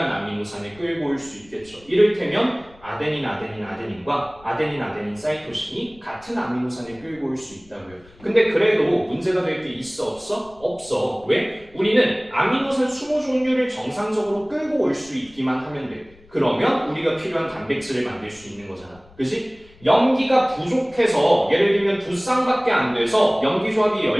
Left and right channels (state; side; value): noise; left; rumble, 26 dB below the sound